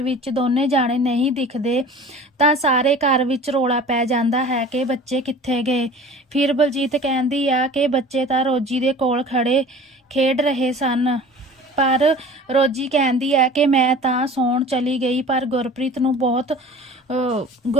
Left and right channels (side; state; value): both; normal; correlation 0.42